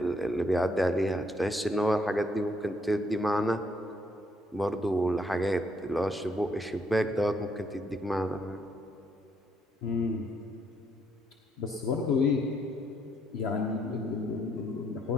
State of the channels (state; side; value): normal; both; correlation 0.72